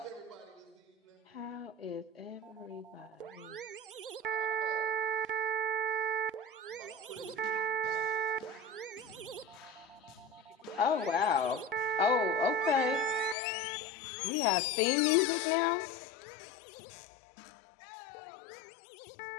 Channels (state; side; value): drops out; right; at 13.4 s